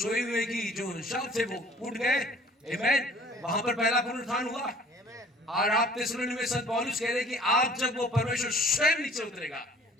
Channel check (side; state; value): both; normal; correlation 0.51